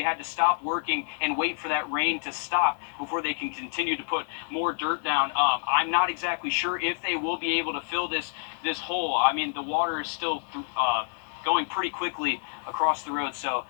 had to stop working and wait for that rain to stop before they can continue to put more dirt down. I'm not exactly sure if they will be able to fill this hole. I mean, the water is still going pretty quickly across the road. So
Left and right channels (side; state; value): right; silent; digital silence